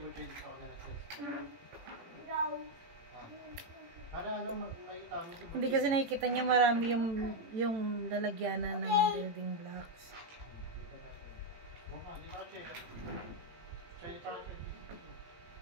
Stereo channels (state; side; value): late; left; 18 ms